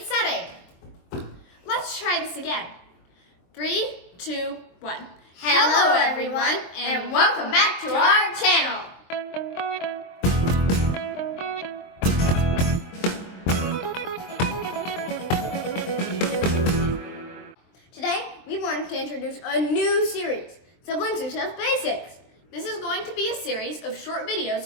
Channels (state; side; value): late; right; 23 ms